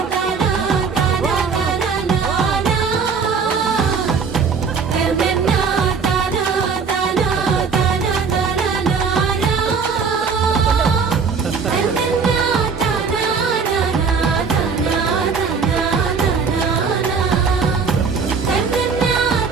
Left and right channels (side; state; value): left; quieter; 5.5 dB